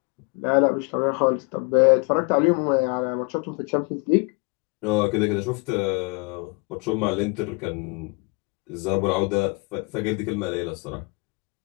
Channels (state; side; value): quieter; right; 30.3 dB